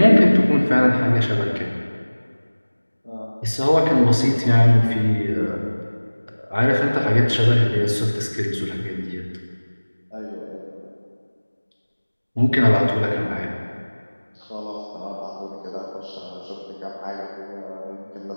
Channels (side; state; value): both; inverted; correlation -1.00